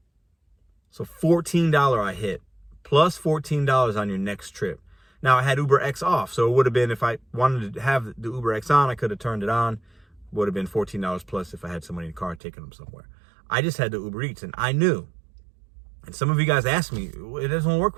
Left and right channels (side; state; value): left; drops out; at 12.4 s